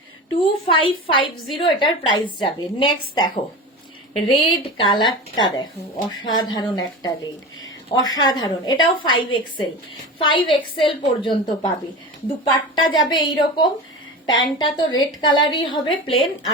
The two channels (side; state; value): both; normal; correlation 0.28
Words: 2550 এটার প্রাইস যাবে। নেক্সট দেখো রেড কালারটা, দেখো অসাধারণ একটা রেড, অসাধারণ। এটাও 5XL, 5XL পর্যন্ত পাবে। দুপাট্টা যাবে এইরকম, প্যান্টটা তো রেড কালারই হবে প্লেন,